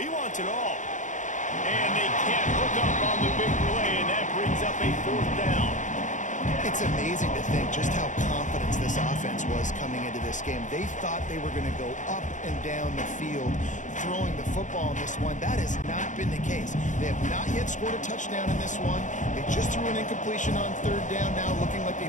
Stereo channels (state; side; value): late; right; 0.36 ms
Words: wants it all. And they can't hook up on the big play, and that brings up a 4th down. It's amazing to think just how confident this offense was coming into this game. They thought they were going to go up and down the field throwing the football in this one. That has not been the case. They have not yet scored a touchdown in this one. They just threw an incompletion on 3rd down now, looking like